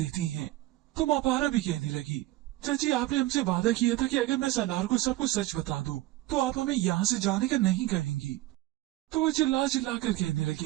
हैं। तो मापारा भी कहने लगी, चाची आपने हमसे वादा किया था कि अगर मैं सालार को सब कुछ सच बता दूं तो आप हमें यहाँ से जाने का नहीं कहेंगी। तो वो चिल्ला चिल्ला कर कहने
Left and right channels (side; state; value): left; quieter; 16.9 dB